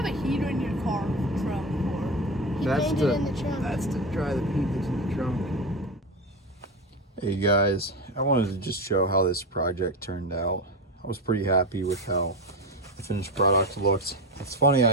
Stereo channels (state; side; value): normal; both; correlation 0.19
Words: a heater in your car trunk for? He painted it in the trunk. That's to dry the paint that's in the trunk. Hey guys, I wanted to just show how this project turned out. I was pretty happy with how the finished product looked. It's funny,